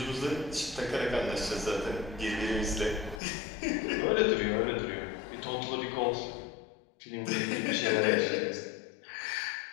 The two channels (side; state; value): right; drops out; at 3.2 s